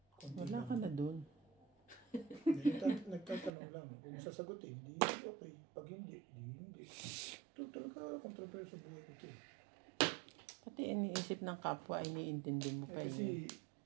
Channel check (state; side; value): drops out; left; at 3.5 s